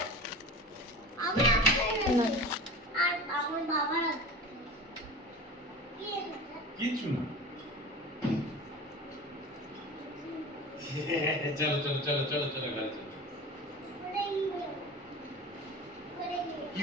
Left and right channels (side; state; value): both; normal; correlation 0.34